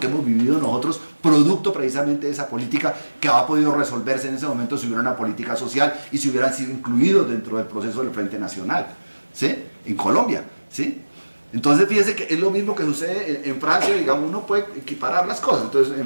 hemos vivido nosotros, producto precisamente de esa política que ha podido resolverse en ese momento si hubiera una política social y si hubieran sido incluidos dentro del proceso del Frente Nacional, ¿sí? En Colombia, ¿sí? Entonces fíjense que es lo mismo que sucede en Francia, digamos, uno puede equiparar las cosas. Entonces,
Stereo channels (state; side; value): inverted; both; correlation -1.00